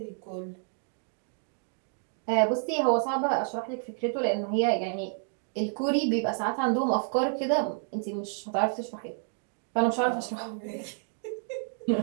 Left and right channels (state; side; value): silent; left; 58 dB below the other